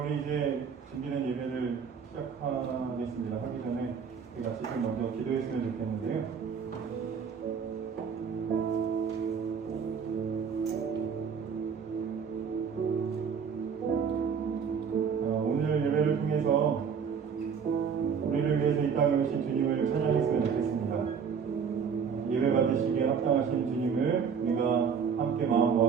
이제 준비된 예배를 시작하겠습니다. 하기 전에 우리 같이 좀 먼저 기도했으면 좋겠는데요. 오늘 예배를 통해서 우리를 위해서 이 땅에 오신 주님을 찬양했으면 좋겠습니다. 예배 받으시기에 합당하신 주님을 우리가 함께 마음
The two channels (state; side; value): quieter; left; 6.6 dB